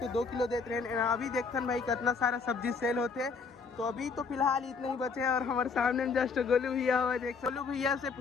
2 किलो देते रहे। अभी देखते भाई कितना सारा सब्जी सेल होते। तो अभी तो फिलहाल इतने ही बचे और हमारे सामने में जस्ट गोलू भैया हुआ देख। गोलू भैया से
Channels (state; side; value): quieter; right; 5.0 dB